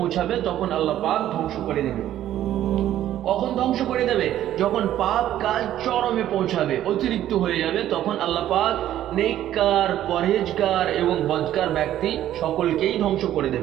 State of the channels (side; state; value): left; quieter; 12.3 dB